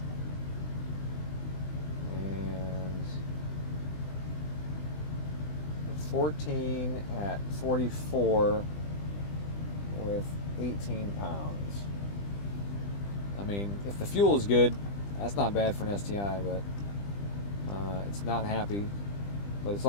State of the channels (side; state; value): right; late; 20 ms